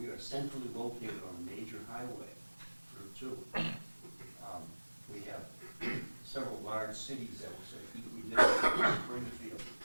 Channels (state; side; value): inverted; both; correlation -1.00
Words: are centrally located on a major highway, Route 2. We have several large cities that will say, we live Springfield,